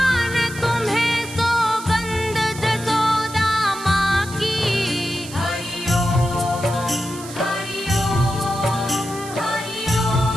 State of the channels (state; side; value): noise; right; hiss, 14 dB below the sound